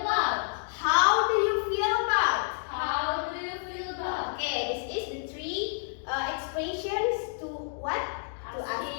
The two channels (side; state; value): right; silent; digital silence